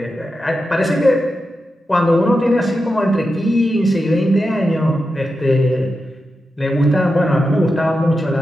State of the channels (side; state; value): both; normal; correlation 0.89